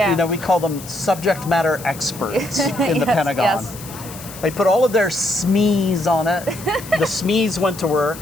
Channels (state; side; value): noise; left; hiss, 15 dB below the sound